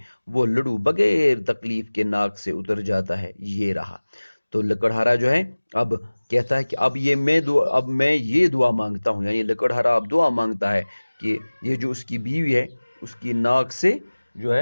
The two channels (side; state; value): both; inverted; correlation -1.00